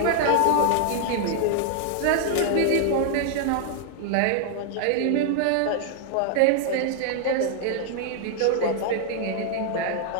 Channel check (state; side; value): different; both; correlation 0.00